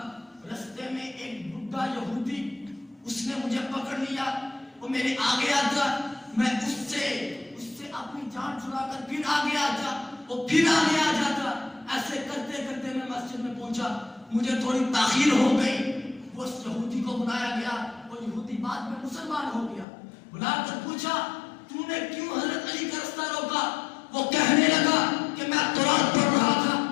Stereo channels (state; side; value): drops out; right; at 19.9 s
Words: رستے میں ایک بڈھا یہودی اس نے مجھے پکڑ لیا. وہ میرے آگے آتا میں اس سے اپنی جان چھڑا کر پھر آگے آتا وہ پھر آگے آ جاتا. ایسے کرتے کرتے میں مسجد میں پہنچا. مجھے تھوڑی تاخیر ہو گئی. وہ اس یہودی کو بلایا گیا. وہ یہودی بعد میں مسلمان ہو گیا. بلا کر پوچھا تو نے کیوں حضرت علی کا رستہ روکا؟ وہ کہنے لگا کہ میں تورات پڑھ رہا تھا.